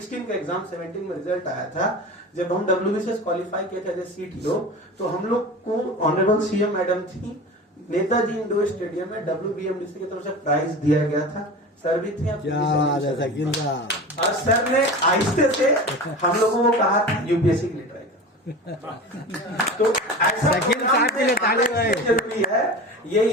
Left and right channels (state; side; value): normal; both; correlation 0.32